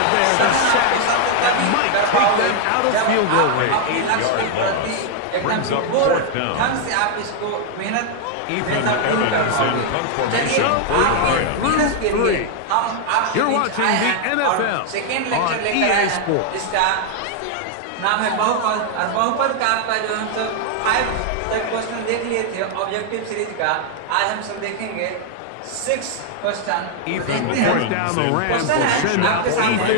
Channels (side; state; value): both; different; correlation 0.00